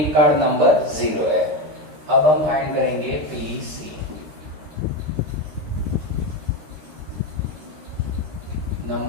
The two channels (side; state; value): left; late; 13 ms